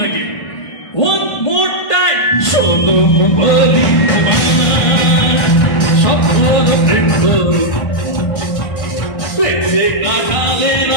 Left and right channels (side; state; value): right; late; 1.5 ms